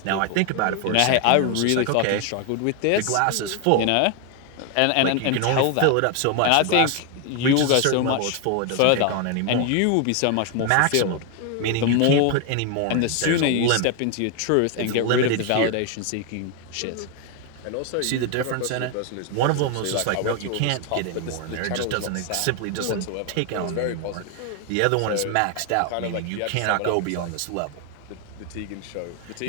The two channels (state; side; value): different; both; correlation 0.01